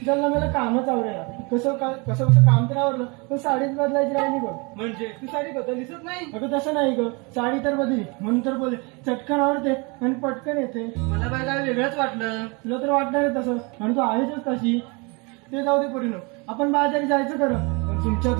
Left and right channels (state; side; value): quieter; left; 29.5 dB